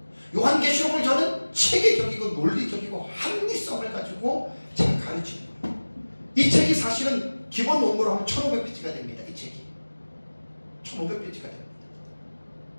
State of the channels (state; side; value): inverted; both; correlation -1.00